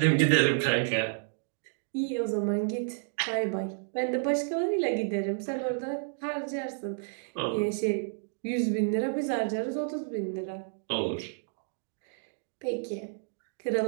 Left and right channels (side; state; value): left; silent; digital silence